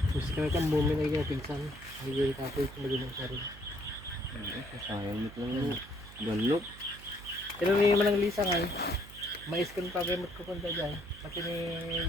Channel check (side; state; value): right; noise; hum, 17 dB below the sound